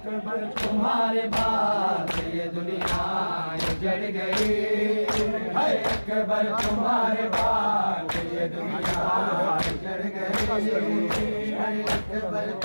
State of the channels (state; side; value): inverted; both; correlation -1.00